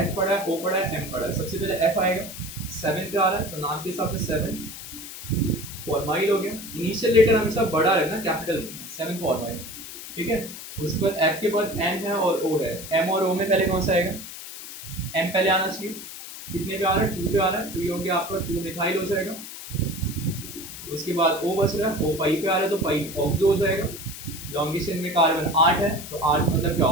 पढ़ा है, ओ पढ़ा है, एम पढ़ा है। सबसे पहले एफ आएगा, 7 पे आ रहा है तो नाम के हिसाब से 7 फॉर्माइल हो गया। इनिशियल लेटर हमेशा बड़ा रहना, कैपिटल लिखना, 7 फॉर्माइल, ठीक है। उसके बाद एफ के बाद एम है और ओ है, एम और ओ में पहले कौन सा आएगा, एम पहले आना चाहिए। कितने पे आ रहा है, 2 पे आ रहा है, तो ये हो गया आपका 2 मिथाइल हो जाएगा। उसके बाद ओ बच रहा है, ओ 5 पे आ रहा है तो 5 ऑक्सो हो जाएगा। लॉन्गेशन में कार्बन 8 है तो 8 मतलब क्या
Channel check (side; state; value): left; noise; hiss, 11 dB below the sound